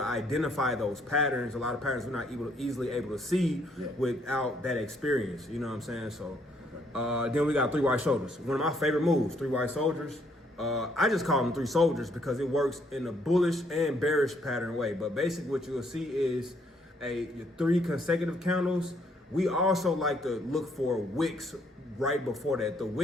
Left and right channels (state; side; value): normal; both; correlation 0.69